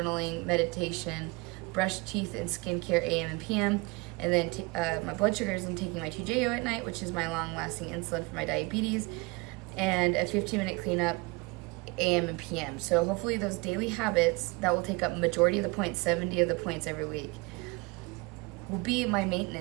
meditation, brush teeth and skincare AM and PM. And then my blood sugars, I'm taking my TJO at night, which is my long-lasting insulin for my diabetes, and a 15-minute cleanup AM and PM. So hopefully those daily habits that will take up majority of the points, 70 of the points every week, will be my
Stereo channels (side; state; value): left; quieter; 25.8 dB